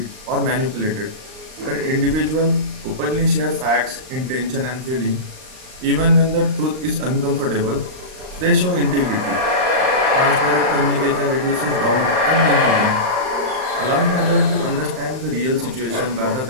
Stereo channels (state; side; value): late; left; 39 ms